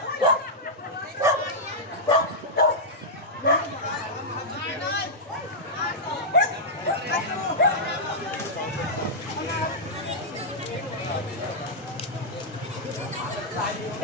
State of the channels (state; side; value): normal; both; correlation -0.08